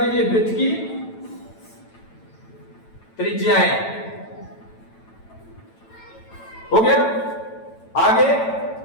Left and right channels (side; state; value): right; late; 9.0 ms